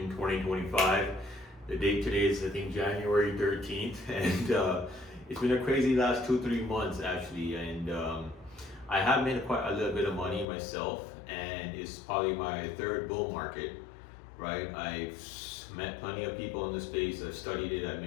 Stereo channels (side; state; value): right; drops out; at 10.5 s